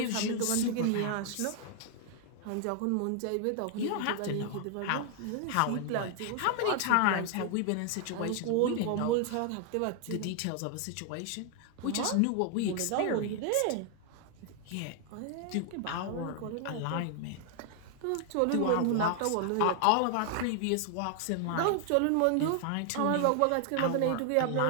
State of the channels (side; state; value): both; different; correlation 0.00